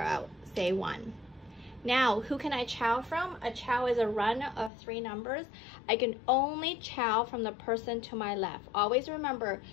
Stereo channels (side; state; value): right; drops out; at 4.7 s